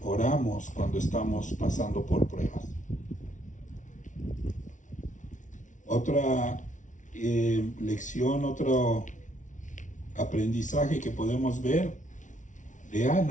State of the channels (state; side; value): late; right; 0.37 ms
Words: oramos cuando estamos pasando por pruebas? Otra lección, otro aprendizaje que podemos ver de